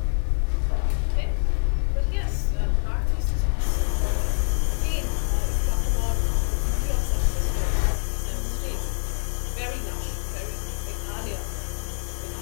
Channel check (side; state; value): right; silent; digital silence